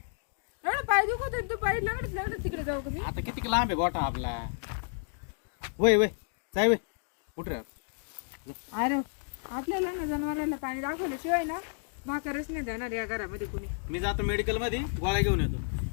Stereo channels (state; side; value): silent; right; digital silence